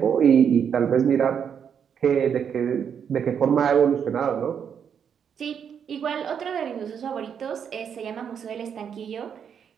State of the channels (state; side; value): quieter; left; 7.7 dB